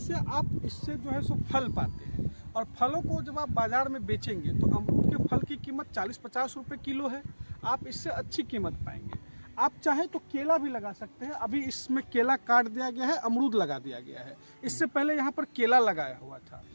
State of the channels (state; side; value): inverted; both; correlation -1.00